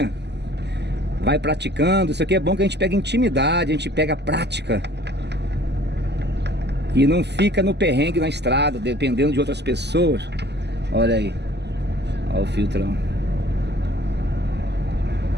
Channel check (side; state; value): left; late; 0.50 ms